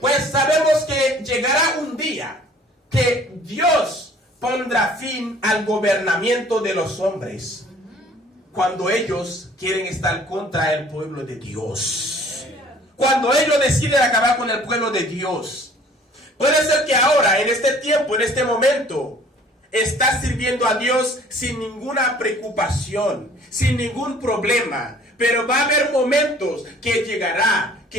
sabemos que llegará un día que Dios pondrá fin al gobernamiento de los hombres, cuando ellos quieren estar contra el pueblo de Dios. Cuando ellos deciden acabar con el pueblo de Dios. Puede ser que ahora, en este tiempo, en este momento, estás sirviendo a Dios sin ninguna preocupación, sin ningún problema. Pero va a haber momentos que llegará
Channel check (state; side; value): normal; both; correlation 0.53